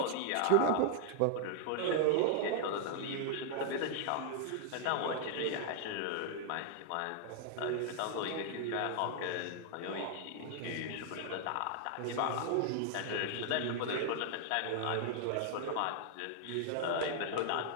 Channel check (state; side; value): different; both; correlation -0.01